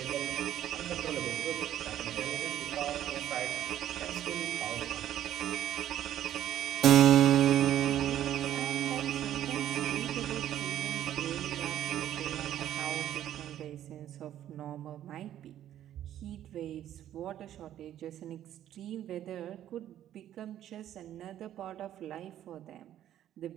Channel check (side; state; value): left; quieter; 11.6 dB